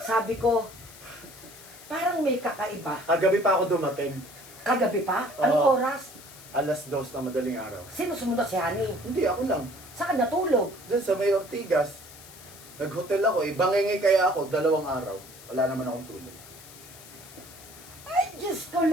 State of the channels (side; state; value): left; noise; hiss, 19 dB below the sound